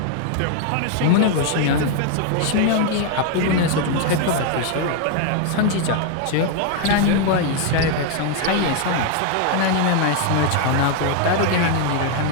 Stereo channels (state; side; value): different; both; correlation 0.00